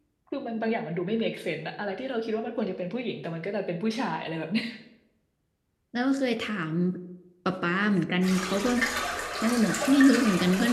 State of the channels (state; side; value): identical; both; correlation 1.00